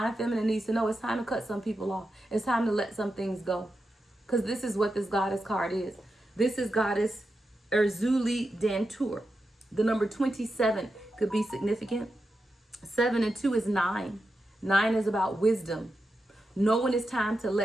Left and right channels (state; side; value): normal; both; correlation 0.89